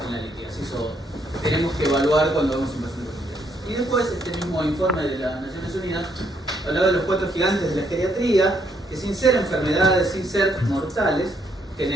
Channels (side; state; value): both; normal; correlation 0.72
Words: litiasis, o tenemos que evaluar cuando vemos un paciente con litiasis. Y después, este mismo informe de las Naciones Unidas hablaba de los 4 gigantes de la geriatría, que sin ser enfermedades, sin ser mortales,